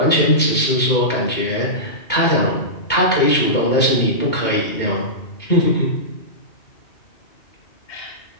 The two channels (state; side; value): late; right; 2.2 ms